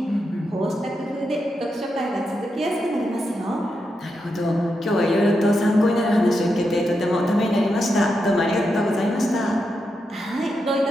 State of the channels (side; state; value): both; normal; correlation 0.85